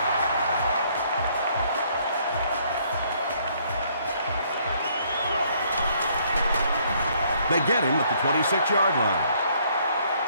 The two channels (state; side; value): inverted; both; correlation -0.66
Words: They get him at the 26-yard line.